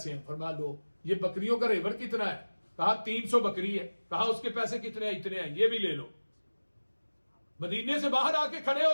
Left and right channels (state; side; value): inverted; both; correlation -1.00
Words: ہیں. فرمایا لو. یہ بکریوں کا ریوڑ کتنا ہے؟ کہا 300 بکری ہے. کہا اس کے پیسے کتنے ہیں؟ اتنے ہیں، یہ بھی لے لو. مدینے سے باہر آ کے کھڑے ہو